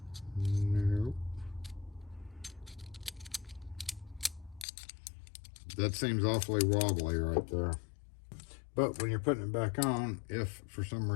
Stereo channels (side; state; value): right; drops out; at 4.7 s